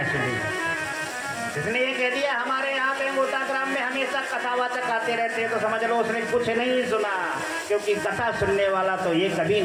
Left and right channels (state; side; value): identical; both; correlation 1.00